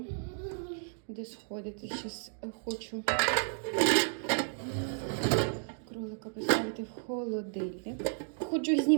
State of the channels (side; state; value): left; silent; 56 dB below the other